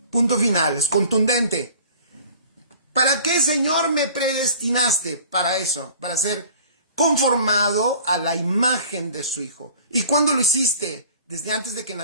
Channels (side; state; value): both; inverted; correlation -0.47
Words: Punto final, es contundente. ¿Para qué, Señor, me predestinaste? Para eso, para ser conformado a la imagen de su Hijo. ¿Y cuándo lo hiciste? Desde antes de que